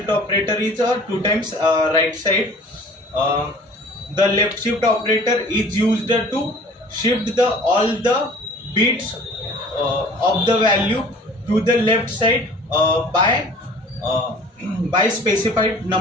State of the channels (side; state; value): both; normal; correlation 0.48